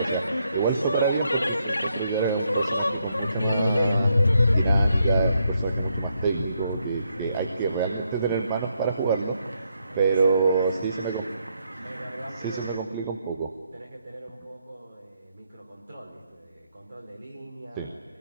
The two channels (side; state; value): both; inverted; correlation -0.77